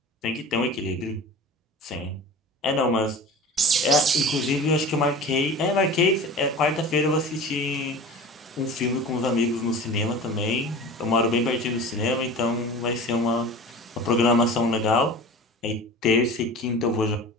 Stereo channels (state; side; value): normal; both; correlation 0.37